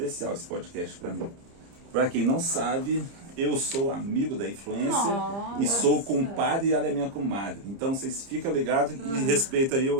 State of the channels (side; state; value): left; late; 30 ms